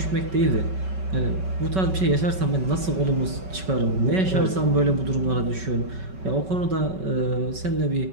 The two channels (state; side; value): late; left; 5.3 ms